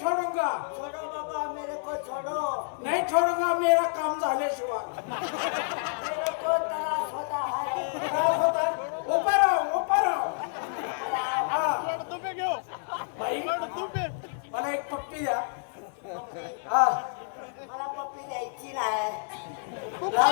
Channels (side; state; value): right; silent; 58 dB below the other